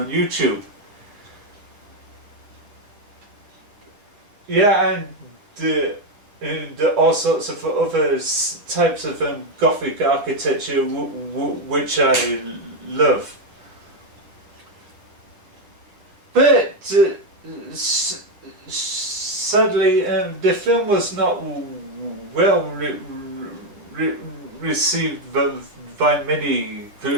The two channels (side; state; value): left; late; 9.7 ms